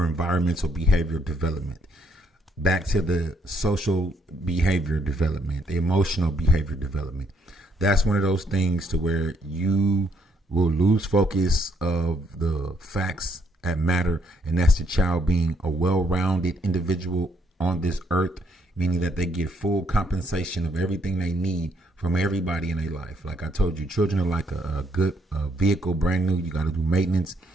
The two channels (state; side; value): normal; both; correlation 0.72